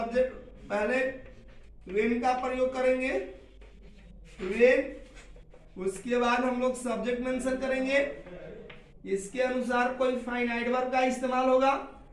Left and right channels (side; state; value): both; identical; correlation 1.00